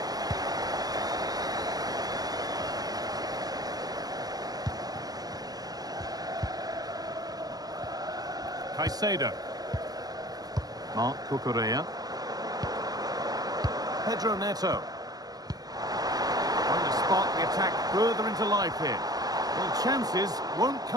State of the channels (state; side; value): late; left; 0.19 ms